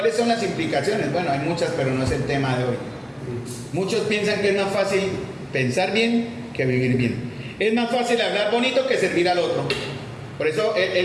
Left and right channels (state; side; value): identical; both; correlation 1.00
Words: son las implicaciones? Bueno, hay muchas, pero no es el tema de hoy. Muchos piensan que es más fácil pensar bien que vivir bien. Es más fácil hablar bonito que servir al otro. Por eso